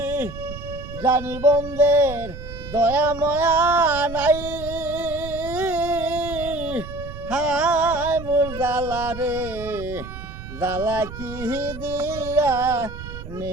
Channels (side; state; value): right; noise; rumble, 11 dB below the sound